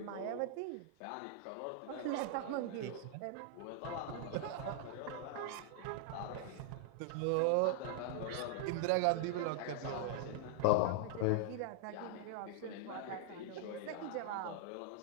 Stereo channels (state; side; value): different; both; correlation -0.01